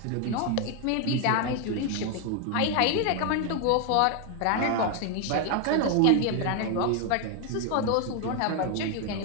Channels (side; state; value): both; different; correlation 0.01